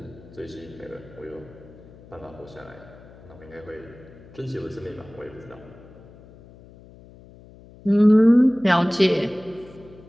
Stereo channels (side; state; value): left; noise; hum, 21 dB below the sound